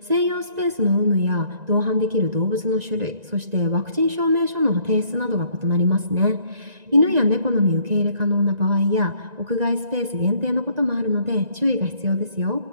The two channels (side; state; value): left; late; 1.9 ms